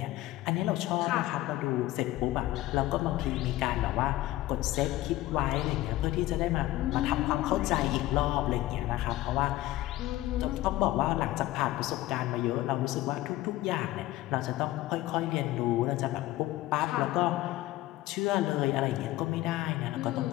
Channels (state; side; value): quieter; right; 16.4 dB